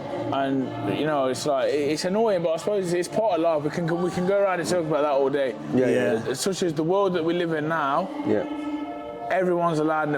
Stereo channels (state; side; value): identical; both; correlation 1.00